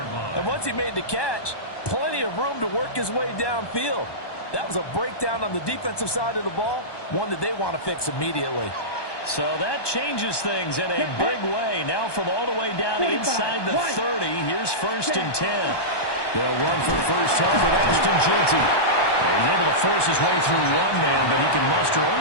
And once he made the catch, plenty of room to work his way downfield. That was a breakdown on the defensive side of the ball, one that they want to fix immediately. So that changes things in a big way. Now from all the way down inside the 30, here's 1st and 10. They'll run for first down with Ashton Jeanty. He's able to force his way through one man, but he can muster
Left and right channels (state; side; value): late; right; 1.2 ms